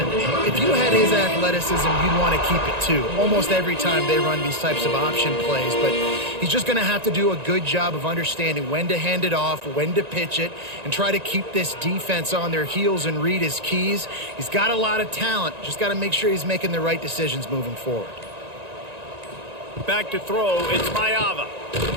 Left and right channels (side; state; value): left; late; 1.9 ms